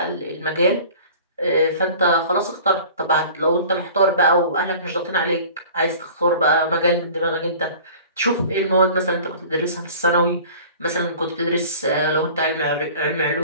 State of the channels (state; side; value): inverted; both; correlation -0.44